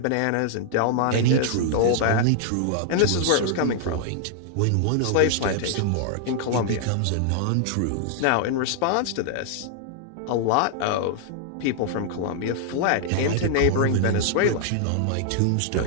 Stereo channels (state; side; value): different; both; correlation -0.01